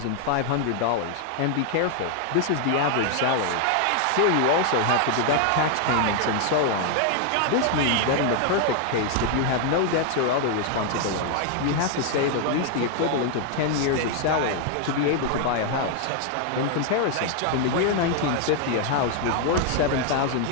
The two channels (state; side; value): different; both; correlation 0.00